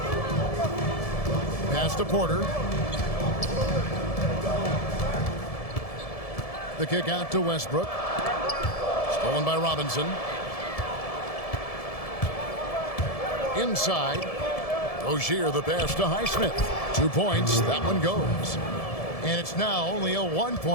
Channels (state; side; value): late; right; 1.7 ms